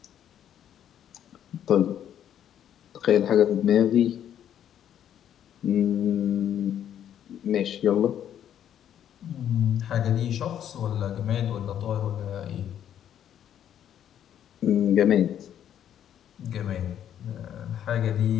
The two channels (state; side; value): quieter; right; 10.1 dB